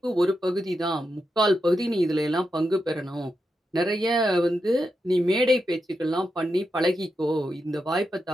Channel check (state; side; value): normal; both; correlation 0.87